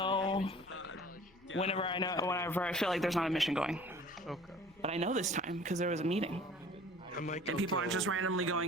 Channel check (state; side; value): normal; both; correlation 0.47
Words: whenever I feel like there's not a mission going. Okay. But I know this time because there was a meeting. And people aren't just randomly